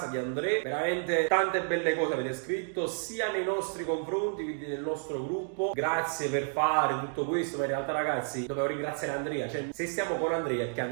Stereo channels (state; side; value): silent; left; 57 dB below the other